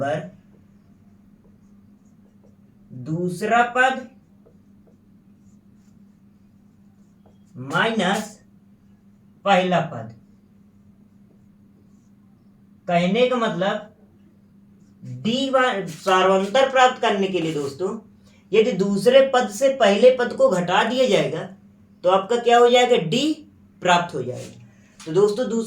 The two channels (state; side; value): identical; both; correlation 1.00